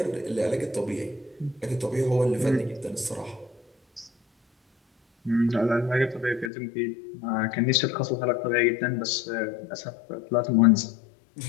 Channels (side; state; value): right; drops out; at 6.5 s